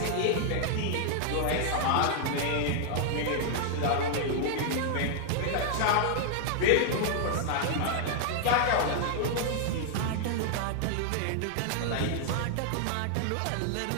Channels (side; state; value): both; different; correlation 0.00